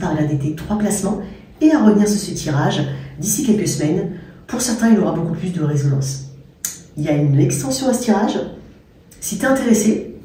à regarder tes 3 placements et à revenir sur ce tirage d'ici quelques semaines. Pour certains, il aura beaucoup plus de résonance. Il y a une extension à ce tirage. Si tu es intéressé,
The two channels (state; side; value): identical; both; correlation 1.00